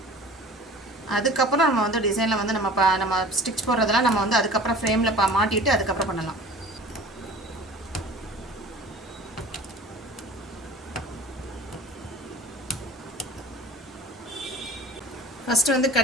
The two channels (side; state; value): both; normal; correlation 0.42